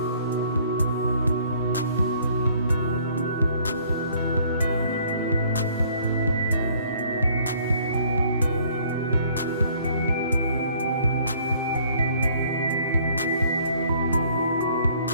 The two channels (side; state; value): both; inverted; correlation -0.59